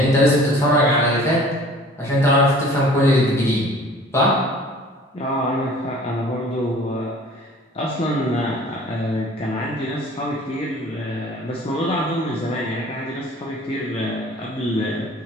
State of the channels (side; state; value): both; normal; correlation 0.49